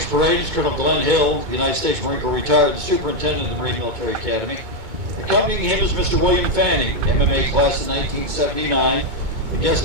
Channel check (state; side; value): late; left; 2.2 ms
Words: parade is Colonel Glenn Hill, United States Marine Corps retired, the Superintendent of the Marine Military Academy. Accompanying him is Mr. William Fanning, MMA class of 1979, the guest